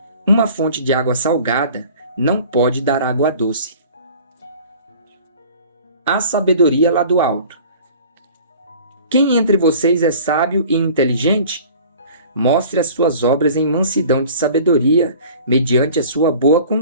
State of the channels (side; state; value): both; inverted; correlation -0.46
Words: uma fonte de água salgada não pode dar água doce. A sabedoria lá do alto. Quem entre vocês é sábio e inteligente? Mostre as suas obras em mansidão de sabedoria, mediante a sua boa